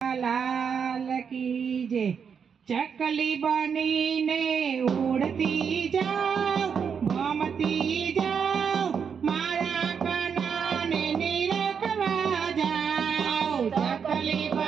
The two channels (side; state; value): left; quieter; 6.8 dB